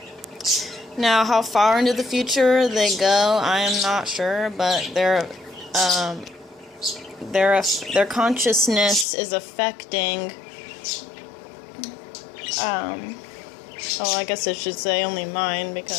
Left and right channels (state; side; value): drops out; right; at 9.1 s